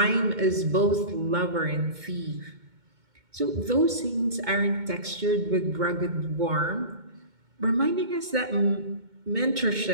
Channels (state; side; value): late; left; 2.2 ms